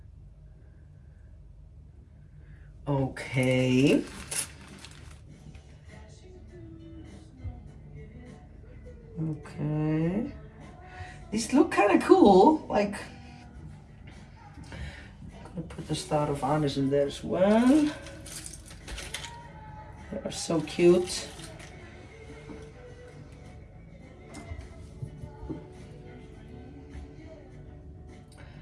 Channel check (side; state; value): both; identical; correlation 1.00